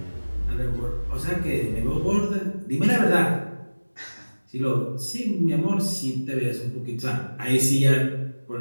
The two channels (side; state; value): both; inverted; correlation -1.00